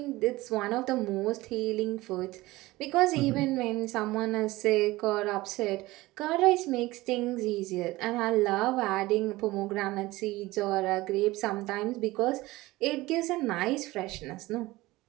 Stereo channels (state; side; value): quieter; left; 19.3 dB